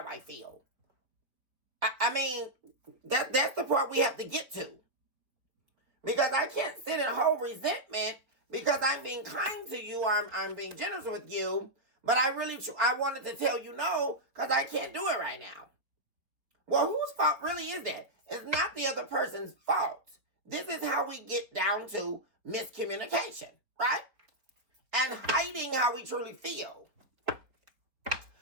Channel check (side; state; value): left; late; 4.0 ms